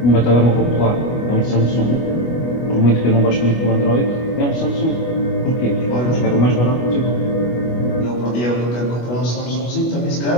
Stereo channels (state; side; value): late; right; 25 ms